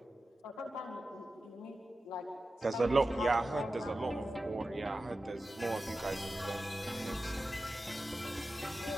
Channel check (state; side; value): normal; both; correlation 0.93